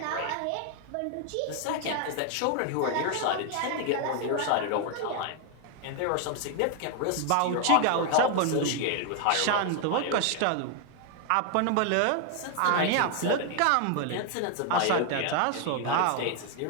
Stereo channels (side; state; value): both; different; correlation 0.00